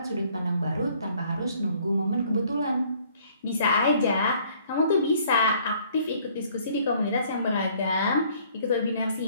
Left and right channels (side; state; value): both; inverted; correlation -0.60